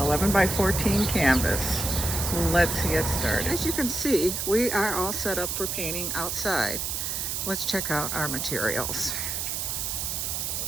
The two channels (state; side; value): noise; right; hiss, 2 dB below the sound